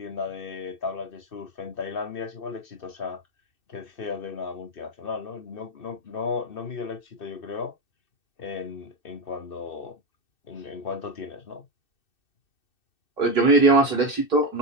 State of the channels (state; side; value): late; right; 2.6 ms